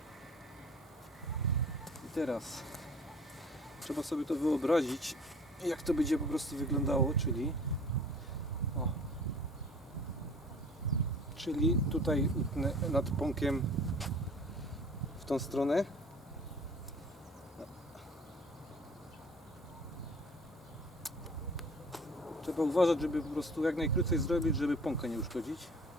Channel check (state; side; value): normal; both; correlation 0.48